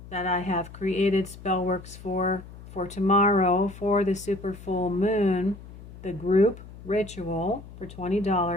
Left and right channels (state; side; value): noise; left; hum, 16 dB below the sound